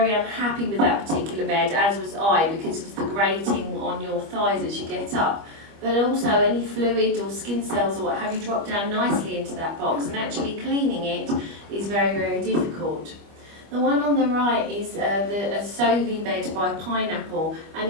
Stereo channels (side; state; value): left; late; 25 ms